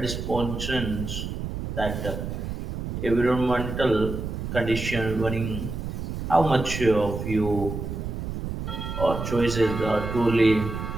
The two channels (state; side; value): noise; right; rumble, 5 dB below the sound